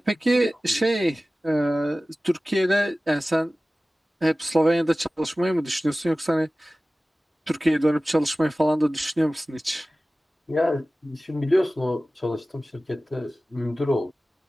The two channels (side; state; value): both; normal; correlation 0.97